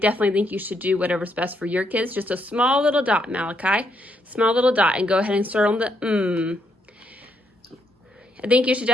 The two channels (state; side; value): normal; both; correlation 0.76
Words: think you should do whatever's best for your kids. Just a small little dot, Malachi. Small little dot, and go ahead and start on the I think you should